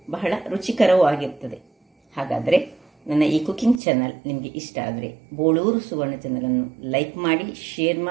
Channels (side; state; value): left; drops out; at 3.8 s